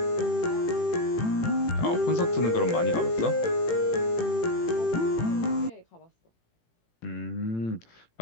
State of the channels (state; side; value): late; right; 18 ms